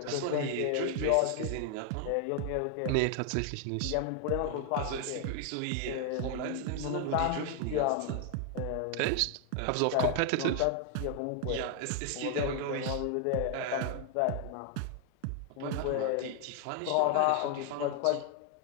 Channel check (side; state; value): both; different; correlation 0.00